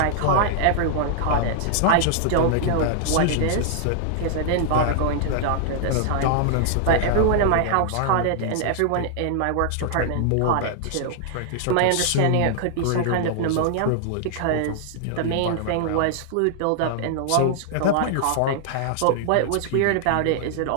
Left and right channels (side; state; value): both; different; correlation -0.01